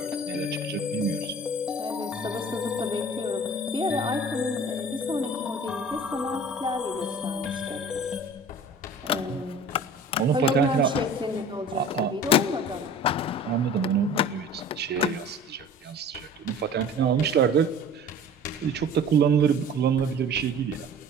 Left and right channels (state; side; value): normal; both; correlation 0.43